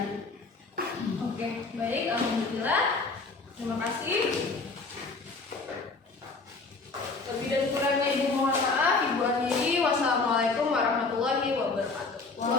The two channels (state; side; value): quieter; right; 3.9 dB